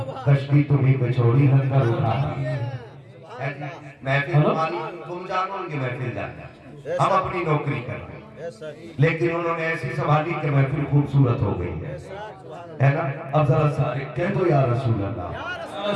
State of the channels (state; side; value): identical; both; correlation 1.00